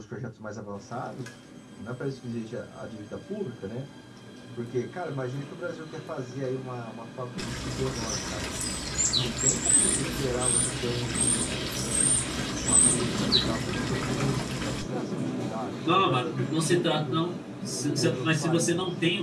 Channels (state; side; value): identical; both; correlation 1.00